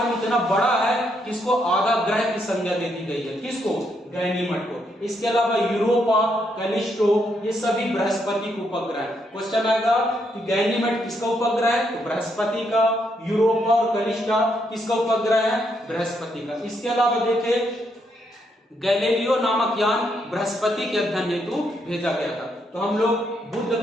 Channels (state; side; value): normal; both; correlation 0.76